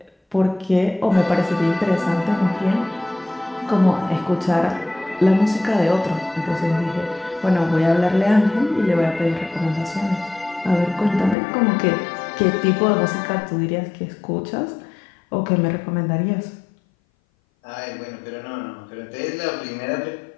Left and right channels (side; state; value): right; drops out; at 11.4 s